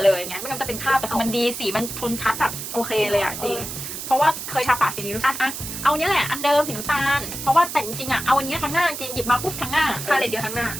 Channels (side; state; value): right; noise; hiss, 7 dB below the sound